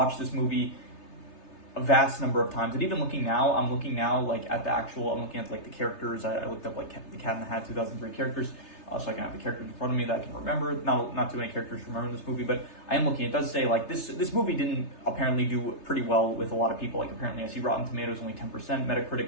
this movie a vast number of times. And even looking now, I'm looking like at the actual. I'm looking at like the characters. I looked up like The Cat in the Hat 2003 characters. So I can have the characters in front of me that I can remember. Not too many characters to remember in this movie, but I am looking. It does say like this movie didn't apparently do pretty well with a lot of people. Like apparently I see Rotten Tomatoes only 10%,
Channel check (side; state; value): right; late; 3.3 ms